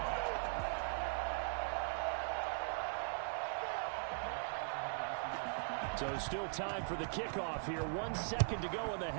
So still time for the kickoff here. 1 second to go in the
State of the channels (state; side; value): silent; left; digital silence